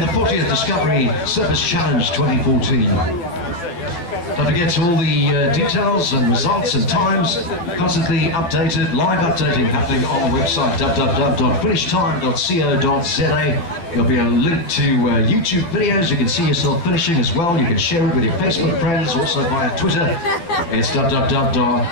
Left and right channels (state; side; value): late; right; 12 ms